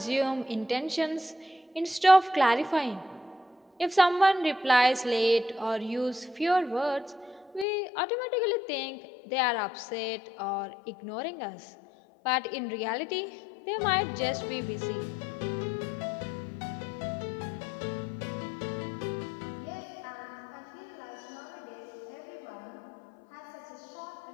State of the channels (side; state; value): right; drops out; at 7.7 s